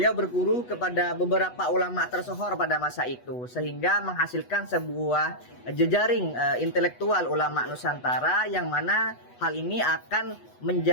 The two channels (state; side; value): late; right; 8.1 ms